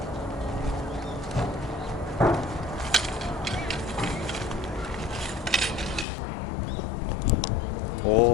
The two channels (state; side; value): drops out; right; at 6.1 s